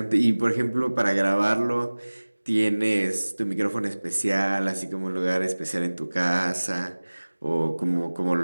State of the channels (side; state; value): both; inverted; correlation -1.00